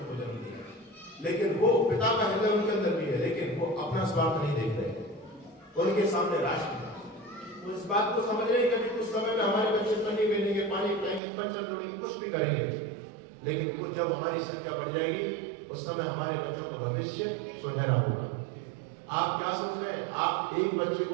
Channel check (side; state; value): left; drops out; at 11.2 s